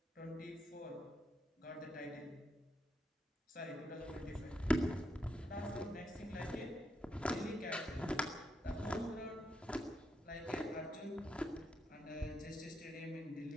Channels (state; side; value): normal; both; correlation 0.81